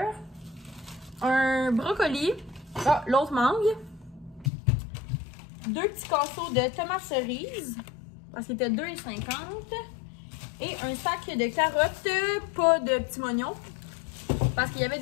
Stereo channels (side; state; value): right; drops out; at 4.5 s